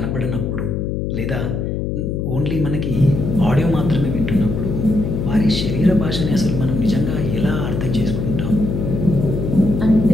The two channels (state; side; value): noise; left; hum, 2 dB below the sound